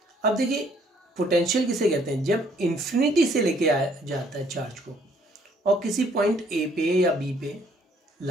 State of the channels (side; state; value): both; normal; correlation 0.64